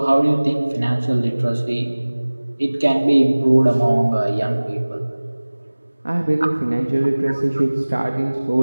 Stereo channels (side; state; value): both; inverted; correlation -1.00